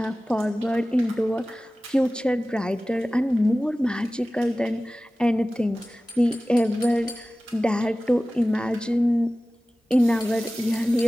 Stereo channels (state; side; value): normal; both; correlation 0.97